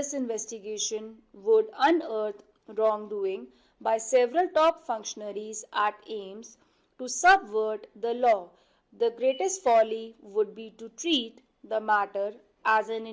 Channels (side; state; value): both; identical; correlation 1.00